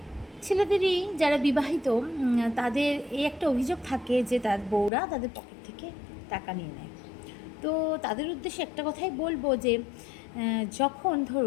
ছেলেদেরই যারা বিবাহিত তাদের এই একটা অভিযোগ থাকে যে তার বউরা তাদের পকেট থেকে টাকা নিয়ে নেয়। তো তাদের উদ্দেশ্যে একটা কথাই বলবো যে যখন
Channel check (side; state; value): right; drops out; at 4.9 s